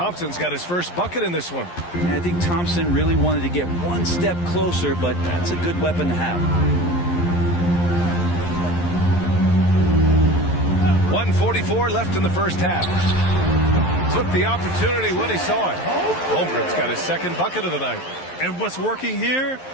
got his first bucket in this one. I think Thompson really wanted to get one step closer, but that's a good weapon to have. 1:44 left in the first half. Took the opportunity when he saw it. Holmgren's got his second bucket of the night. And what's working here?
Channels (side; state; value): right; late; 11 ms